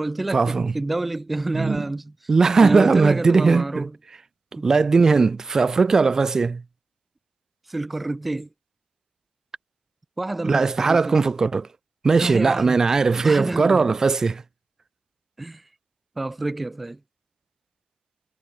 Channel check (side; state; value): left; quieter; 3.8 dB